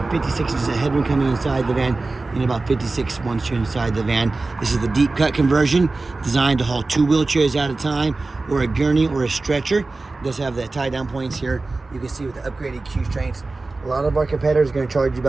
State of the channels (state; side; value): quieter; left; 3.4 dB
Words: 56 inches of headroom coming inside the van, and about 56 once you're inside the van. This is the deep cut conversion, designed to haul 2 wheelchairs at a time, or a gurney or a stretcher. It does have the tie down points here. You can see with the upgraded Q strengths. A lot of our competitors are going to charge you